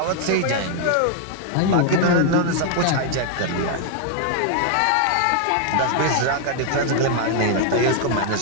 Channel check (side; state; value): both; different; correlation 0.00